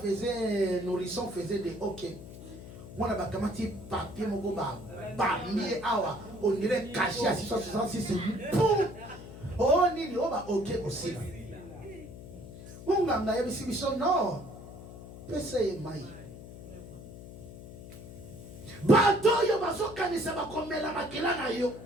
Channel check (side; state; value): left; noise; hum, 14 dB below the sound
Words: un nourrisson faisait des hockey, on a un papier, on dirait caché à 666, oh, on va ok aussi. On a un non. Pese mai. Bato yo bazokanisa bakomela makila na yo.